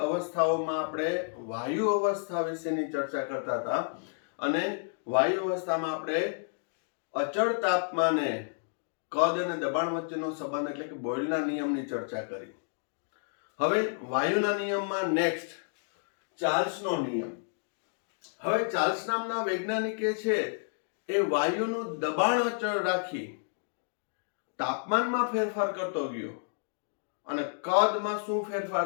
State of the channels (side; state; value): right; silent; digital silence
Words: અવસ્થાઓમાં આપણે વાયુ અવસ્થા વિશેની ચર્ચા કરતા હતા અને વાયુ અવસ્થામાં આપણે અચળ તાપમાને કદ અને દબાણ વચ્ચેનો સંબંધ એટલે કે બોયલના નિયમની ચર્ચા કરી. હવે વાયુના નિયમમાં નેક્સ્ટ ચાર્લ્સનો નિયમ. હવે ચાર્લ્સ નામના વૈજ્ઞાનિકે છે એ વાયુનું દબાણ અચળ રાખી તાપમાનમાં ફેરફાર કરતો ગયો અને કદમાં શું ફેરફાર